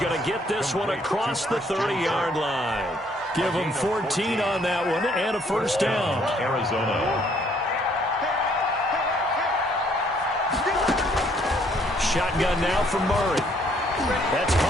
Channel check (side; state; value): both; normal; correlation 0.66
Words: to get this one across the 30-yard line. Give him 14 on that one and a 1st down. Arizona. Shotgun now from Murray. That's